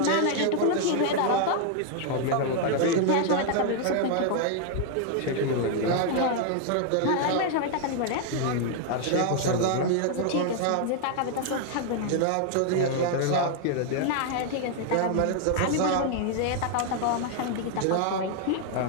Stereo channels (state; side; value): different; both; correlation 0.00